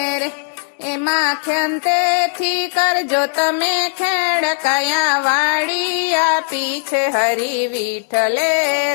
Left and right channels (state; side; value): silent; right; 65 dB below the other